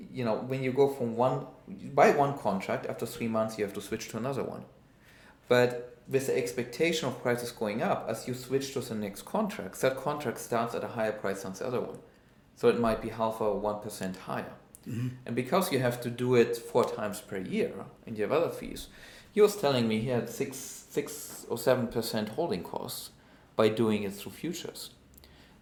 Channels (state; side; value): identical; both; correlation 1.00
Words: when you go from you buy one contract, after 3 months you have to switch to another one. But with the expectation of prices going up, as you switch to the next contract, that contract starts at a higher price than the other one. So it might be 0.5 or 1% higher. And because you have to do it 4 times per year and you have other fees, he was telling me he had 6 or 7% holding costs by doing it through futures.